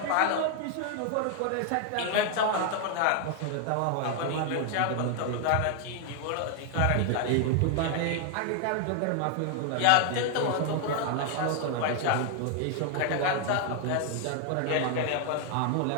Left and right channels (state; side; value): different; both; correlation 0.00